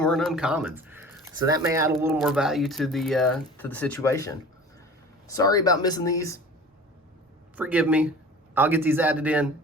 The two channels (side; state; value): both; normal; correlation 0.41